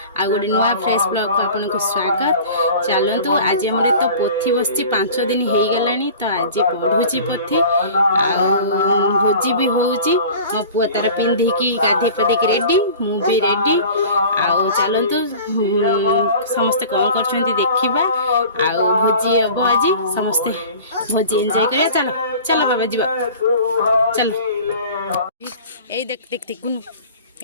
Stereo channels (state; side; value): inverted; both; correlation -0.41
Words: आ गोटे नुआ फ्रेश ब्लॉग को आपन को स्वागत। चलतु आज आम तो पोथी बसची 5 दिन हो गलानी तो आज पढ़ुची पोथी भोजी भी होउची मो पुआ तार पिंधिकी गाधी पाधिकी रेडी मु भी रेडी चलतु समस्ते कौन कर देखा भोजी हम आज समस्ते भोजी एंजॉय करिया। चलो चलो बाबा जीवा चलो ए देख देख देख गुनु